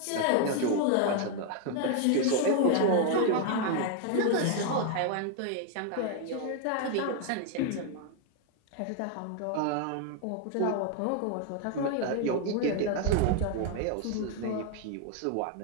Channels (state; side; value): different; both; correlation 0.00